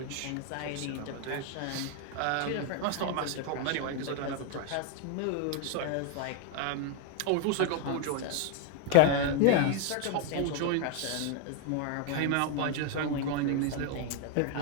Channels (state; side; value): different; both; correlation 0.01